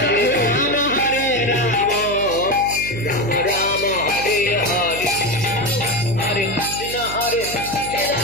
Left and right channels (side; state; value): right; noise; hum, 11 dB below the sound